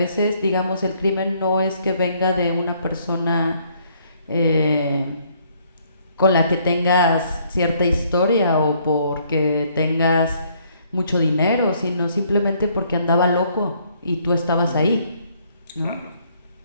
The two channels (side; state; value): both; inverted; correlation -0.66